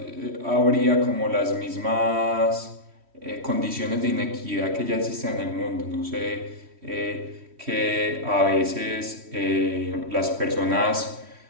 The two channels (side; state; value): left; late; 3.1 ms